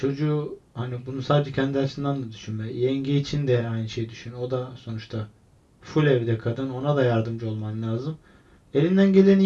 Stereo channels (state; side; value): identical; both; correlation 1.00